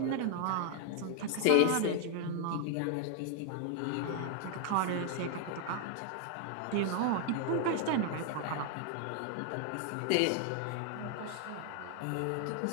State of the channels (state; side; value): different; both; correlation 0.00